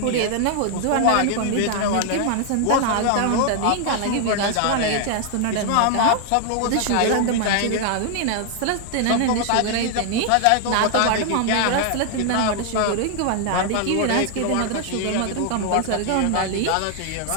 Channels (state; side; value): different; both; correlation 0.00